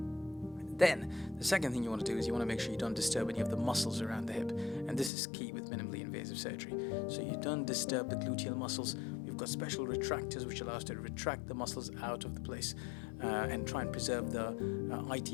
Then, the second thing you want to do is you want to make sure you don't disturb any of the muscles around the hip. And this is key with minimally invasive surgery. So you don't disturb the gluteal muscles. We've got special retractors which allow us to retract the muscles out of the place and try and preserve the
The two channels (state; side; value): drops out; right; at 5.1 s